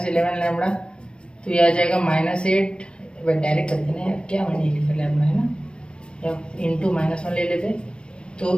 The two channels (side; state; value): right; late; 0.053 ms